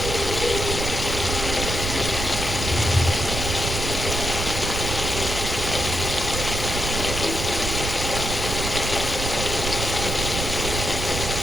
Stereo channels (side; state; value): right; noise; rumble, 3 dB below the sound